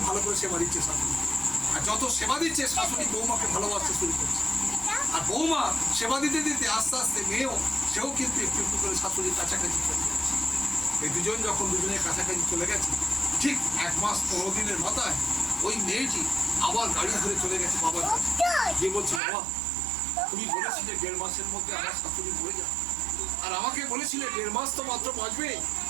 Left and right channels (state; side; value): drops out; left; at 19.2 s